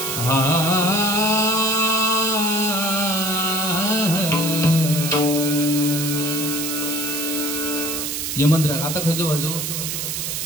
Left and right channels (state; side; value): noise; right; hiss, 3 dB below the sound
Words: यमनराग आता खयचो वाजू